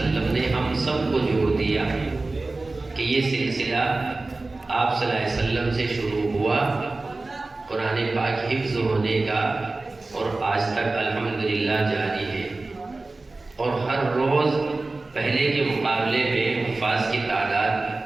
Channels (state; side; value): quieter; left; 3.3 dB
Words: نے ہم سب کو جوڑ دیا کہ یہ سلسلہ آپ صلی اللہ علیہ وسلم سے شروع ہوا قرآن پاک حفظ ہونے کا، اور آج تک الحمدللہ جاری ہے. اور ہر روز پہلے کے مقابلے میں حفاظ کی